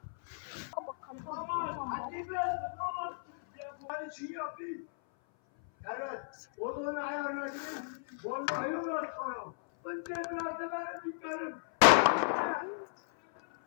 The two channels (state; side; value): silent; right; 55 dB below the other